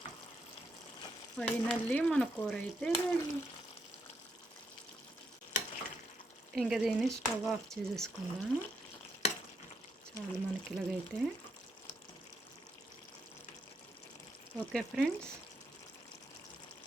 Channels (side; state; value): both; normal; correlation 0.79